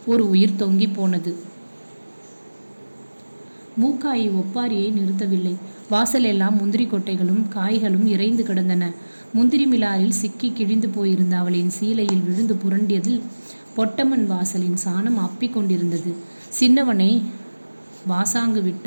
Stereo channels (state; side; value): inverted; both; correlation -1.00